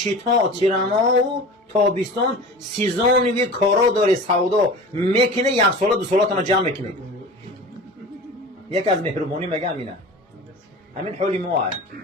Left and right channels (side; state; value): both; normal; correlation 0.35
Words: تیرما و تابستان سیزانی کارا داره سودا میکنه، یک سال 2 سالاتون جمع میکنه. یک از مهربانی میگه همینه. همین حالی ما هست.